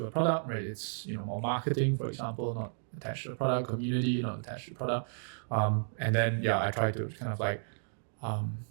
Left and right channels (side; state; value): left; silent; digital silence